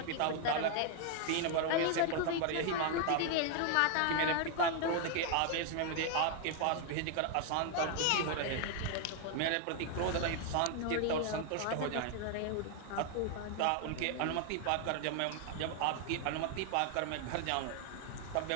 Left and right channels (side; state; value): both; different; correlation 0.00